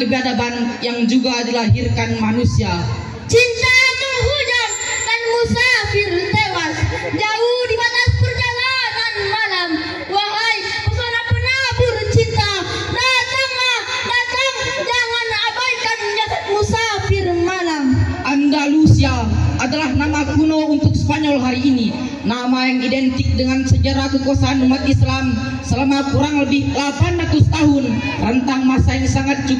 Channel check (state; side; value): identical; both; correlation 1.00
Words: yang juga dilahirkan manusia. Cinta menghujam dan musafir tewas jauh di batas perjalanan malam. Wahai pesona penabur cinta, datanglah, datang, jangan abaikan jasad musafir malam. Andalusia adalah nama kuno untuk Spanyol hari ini, nama yang identik dengan sejarah kekuasaan umat Islam selama kurang lebih 800 tahun, rentang masa yang sangat